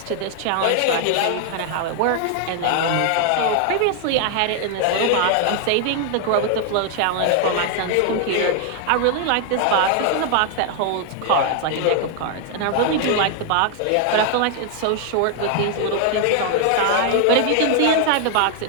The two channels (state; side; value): different; both; correlation 0.00